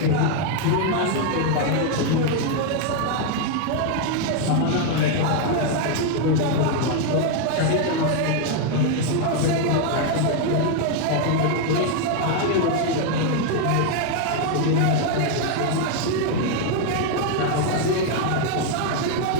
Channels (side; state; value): both; different; correlation 0.01